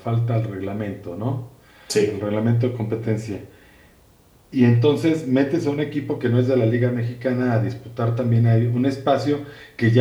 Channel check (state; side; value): identical; both; correlation 1.00